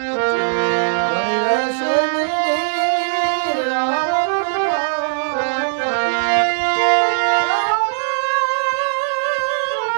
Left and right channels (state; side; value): silent; left; digital silence